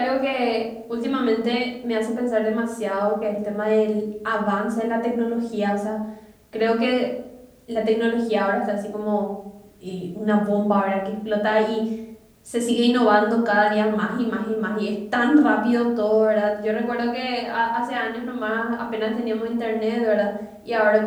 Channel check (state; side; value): identical; both; correlation 1.00